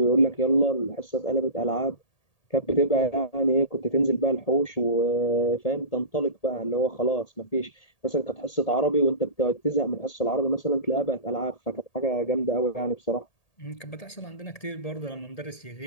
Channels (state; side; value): late; right; 1.8 ms